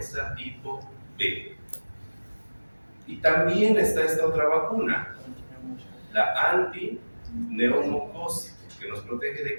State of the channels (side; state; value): both; inverted; correlation -1.00